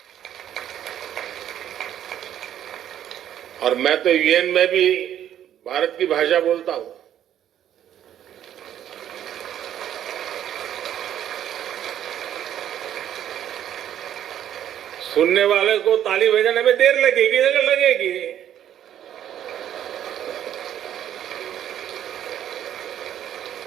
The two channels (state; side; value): quieter; left; 10.7 dB